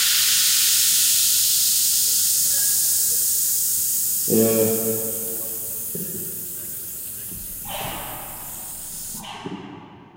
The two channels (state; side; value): identical; both; correlation 1.00